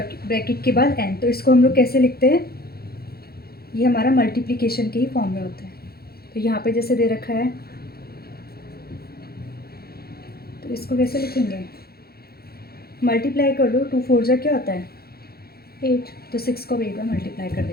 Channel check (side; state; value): right; late; 0.45 ms